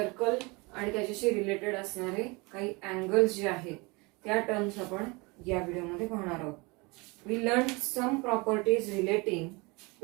आणि त्याच्याशी रिलेटेड असणारे काही अँगल्स जे आहेत त्या टर्म्स आपण या व्हिडिओमध्ये पाहणार आहोत. We learned some properties relating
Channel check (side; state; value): left; quieter; 26.8 dB